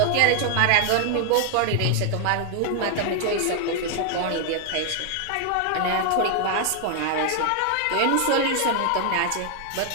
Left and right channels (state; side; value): different; both; correlation 0.00